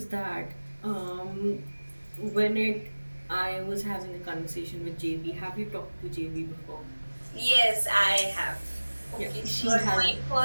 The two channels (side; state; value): both; inverted; correlation -1.00